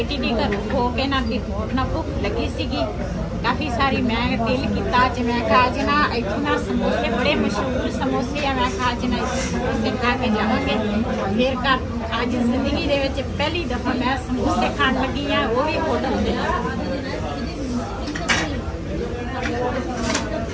ਦੇ ਘਰ ਹੋ ਕੇ ਨਾ ਵੀ ਹੋਰ ਨਾ ਭੁੱਖ ਲੱਗੀ ਸੀਗੀ ਕਾਫੀ ਸਾਰੀ। ਮੈਂ ਦਿਲ ਕੀਤਾ ਅੱਜ ਮੈਂ ਕਿਹਾ ਅੱਜ ਨਾ ਇੱਥੇ ਨਾ ਸਮੋਸੇ ਬੜੇ ਮਸ਼ਹੂਰ ਸਮੋਸੇ ਆ। ਮੈਂ ਕਿਹਾ ਅੱਜ ਨਾ ਸਮੋਸੇ ਖਾ ਕੇ ਜਾਵਾਂਗੇ ਫਿਰ ਘਰ। ਅੱਜ ਜ਼ਿੰਦਗੀ ਦੇ ਵਿੱਚ ਪਹਿਲੀ ਦਫਾ ਮੈਂ ਸਮੋਸੇ ਖਾਣ ਲੱਗੀ ਆ, ਉਹ ਵੀ ਹੋਟਲ ਦੇ।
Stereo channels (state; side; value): identical; both; correlation 1.00